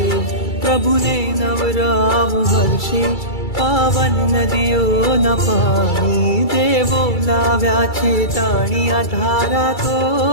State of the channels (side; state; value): right; late; 2.3 ms